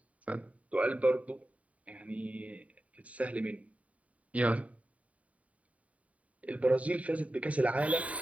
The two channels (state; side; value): late; left; 0.068 ms